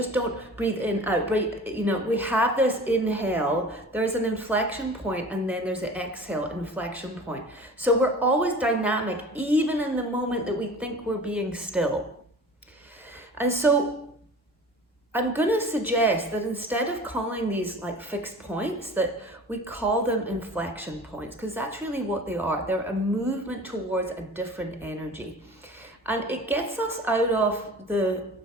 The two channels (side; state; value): both; normal; correlation 0.41